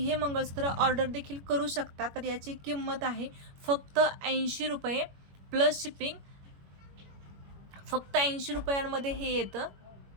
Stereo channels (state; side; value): late; left; 21 ms